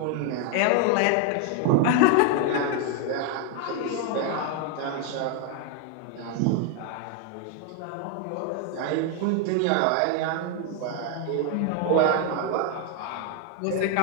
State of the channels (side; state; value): both; different; correlation 0.01